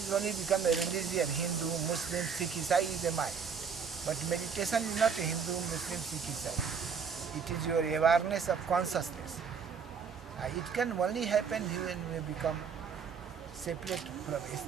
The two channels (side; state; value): left; quieter; 6.3 dB